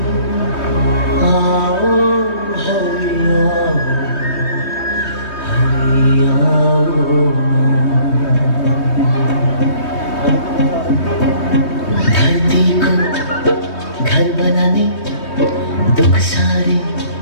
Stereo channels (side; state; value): right; late; 3.2 ms